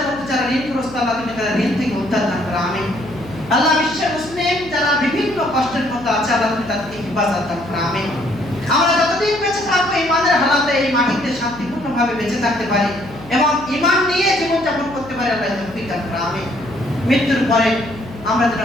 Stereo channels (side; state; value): left; noise; hum, 17 dB below the sound